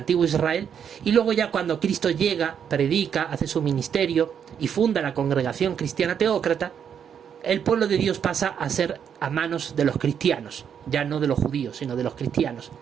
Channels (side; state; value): left; quieter; 8.0 dB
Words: Israel, y luego ya cuando Cristo llega, predica, hace su ministerio y funda la congregación cristiana teócrata, el pueblo de Dios pasa a ser a manos de los cristianos, ya no de los judíos, sino de los cristianos.